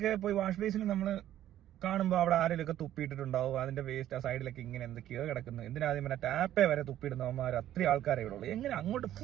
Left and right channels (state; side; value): quieter; left; 12.3 dB